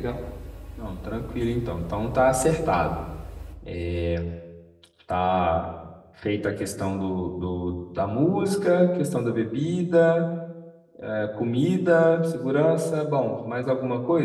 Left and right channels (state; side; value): identical; both; correlation 1.00